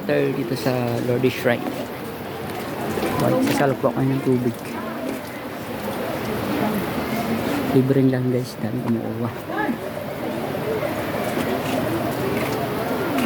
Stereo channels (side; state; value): both; identical; correlation 1.00